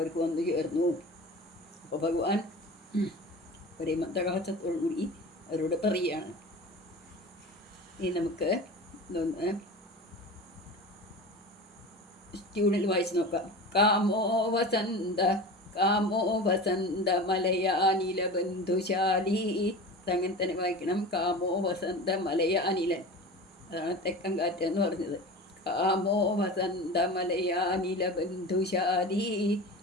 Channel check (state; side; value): normal; both; correlation 0.33